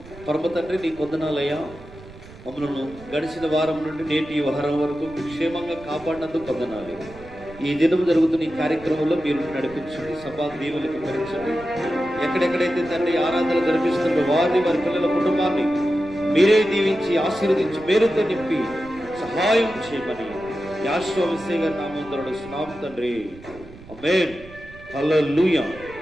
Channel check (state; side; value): noise; right; rumble, 19 dB below the sound